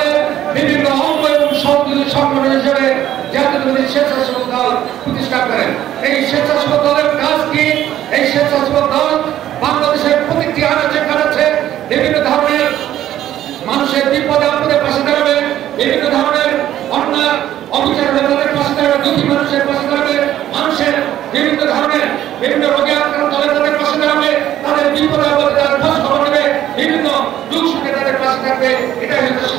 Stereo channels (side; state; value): left; quieter; 12.2 dB